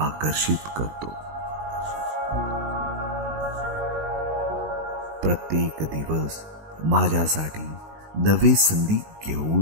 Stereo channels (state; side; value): late; left; 19 ms